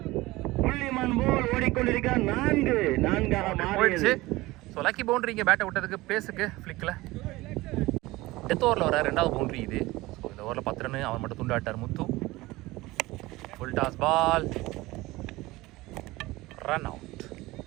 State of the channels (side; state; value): left; quieter; 19.7 dB